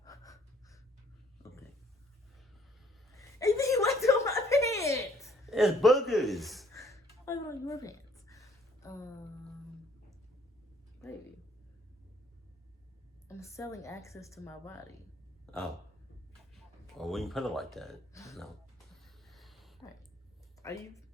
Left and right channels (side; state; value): both; normal; correlation 0.62